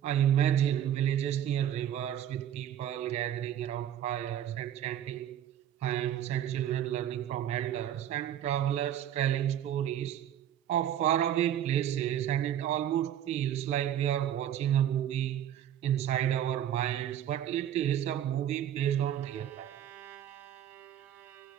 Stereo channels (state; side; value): quieter; left; 10.7 dB